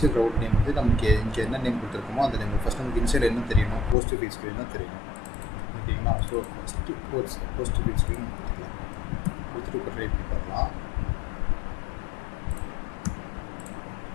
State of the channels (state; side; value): drops out; right; at 4.0 s